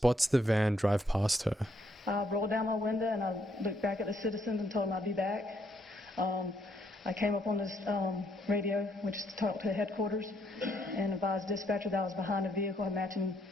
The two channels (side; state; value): both; normal; correlation 0.72